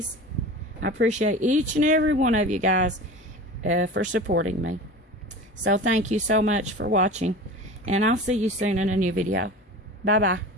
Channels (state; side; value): normal; both; correlation 0.34